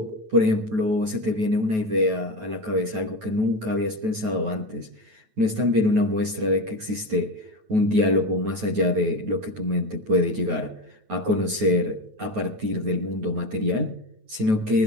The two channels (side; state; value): left; late; 9.3 ms